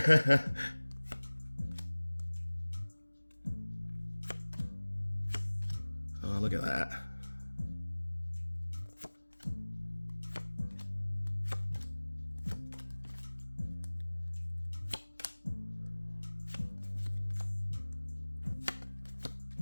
Oh, look at that.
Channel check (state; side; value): inverted; both; correlation -1.00